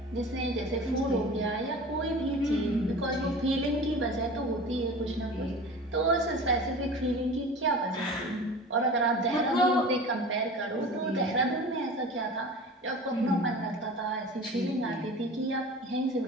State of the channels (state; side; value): normal; both; correlation 0.37